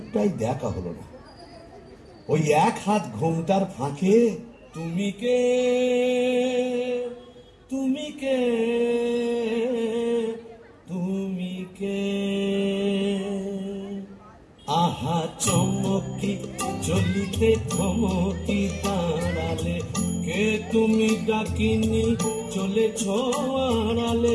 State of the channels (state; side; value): identical; both; correlation 1.00